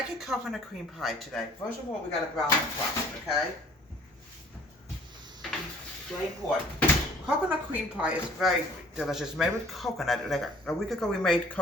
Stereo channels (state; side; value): normal; both; correlation 0.54